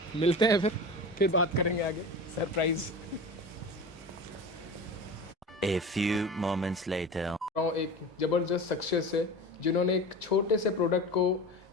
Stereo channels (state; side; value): normal; both; correlation 0.31